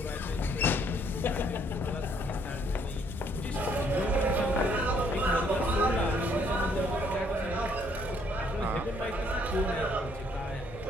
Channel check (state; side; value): normal; both; correlation 0.66